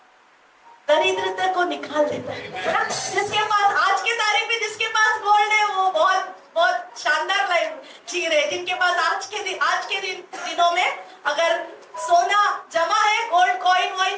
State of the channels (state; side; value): identical; both; correlation 1.00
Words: दरिद्रता को निकाल देता है। जिसके पास आज के तारीख में जिसके पास गोल्ड है, वो बहुत बहुत शानदार लाइफ जी रहे। जिनके पास आज के दिनों में अगर सोना जमा है, गोल्ड कॉइन